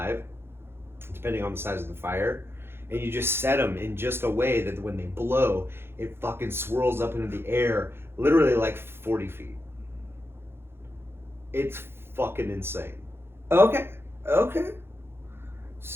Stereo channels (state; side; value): late; left; 0.11 ms